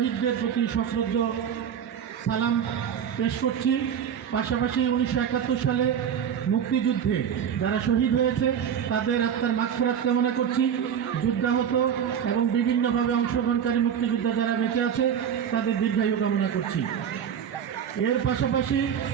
প্রতি সশ্রদ্ধ সালাম পেশ করছি। পাশাপাশি 1971 সালে মুক্তিযুদ্ধে যারা শহীদ হয়েছে তাদের আত্মার মাগফিরাত কামনা করছি। যুদ্ধাহত এবং বিভিন্নভাবে অংশগ্রহণকারী মুক্তিযোদ্ধা যারা বেঁচে আছে তাদের দীর্ঘায়ু কামনা করছি। এর পাশাপাশি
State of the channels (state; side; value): quieter; left; 8.4 dB